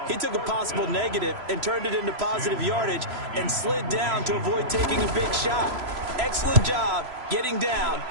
He took a possible negative and turned it into positive yardage and slid down to avoid taking a big shot. Excellent job getting down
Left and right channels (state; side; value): late; left; 3.0 ms